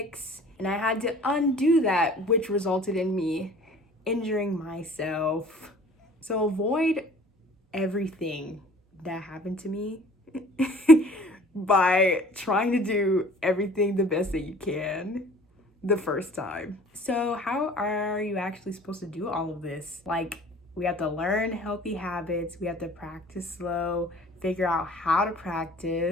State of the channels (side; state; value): both; normal; correlation 0.49